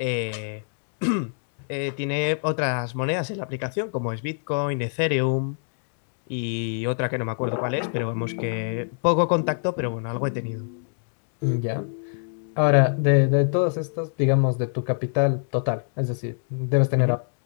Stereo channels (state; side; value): silent; right; digital silence